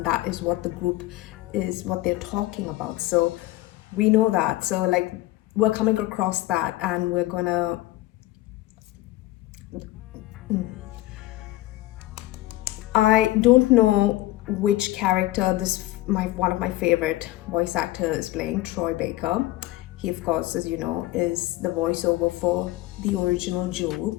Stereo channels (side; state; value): right; quieter; 17.2 dB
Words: that is what the group is, what they're talking about. So we know that. So like, we're coming across that, and we're gonna I don't know which character one of my favorite voice actors is playing, Troy Baker. He, of course, as you know, is the voiceover for the original Joel